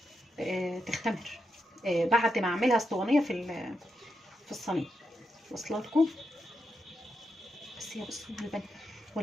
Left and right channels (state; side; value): normal; both; correlation 0.85